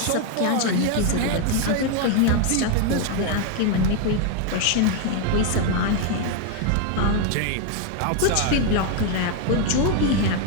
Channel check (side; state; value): both; different; correlation 0.01